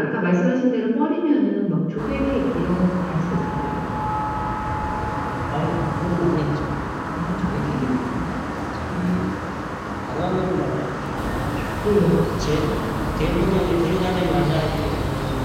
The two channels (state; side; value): identical; both; correlation 1.00